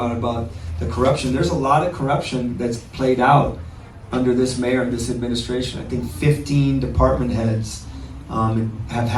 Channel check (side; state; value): both; identical; correlation 1.00